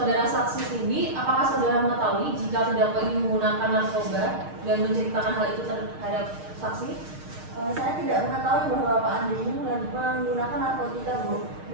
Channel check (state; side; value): late; left; 6.5 ms